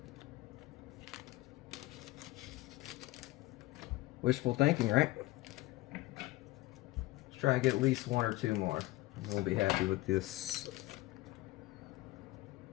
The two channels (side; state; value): right; quieter; 18.8 dB